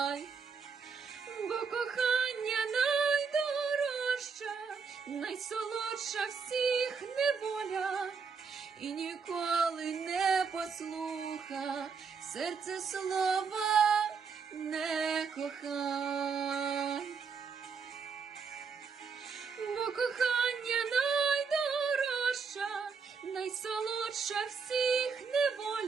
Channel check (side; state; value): left; quieter; 5.6 dB